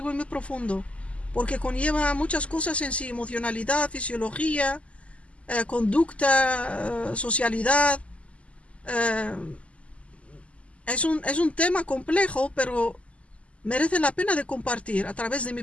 y muy profundo. Porque conlleva muchas cosas en sí. Emocionalidad, fisiología, conducta, socialidad. eh, es un tema complejo, pero merece la pena de compartir a través de mi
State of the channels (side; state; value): right; late; 0.062 ms